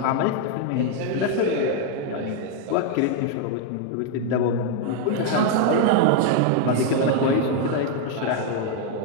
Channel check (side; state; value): both; different; correlation 0.00